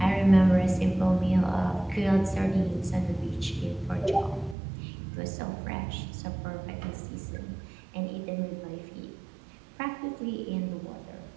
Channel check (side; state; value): left; drops out; at 4.5 s